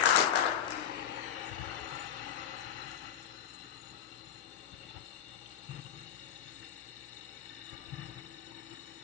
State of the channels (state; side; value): quieter; right; 9.2 dB